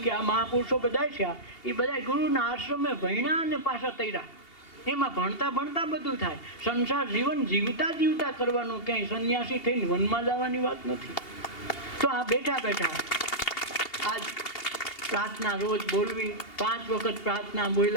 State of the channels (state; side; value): late; right; 2.8 ms